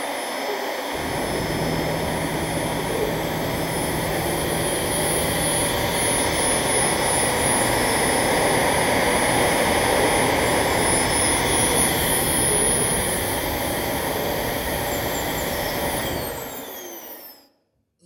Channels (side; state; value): both; identical; correlation 1.00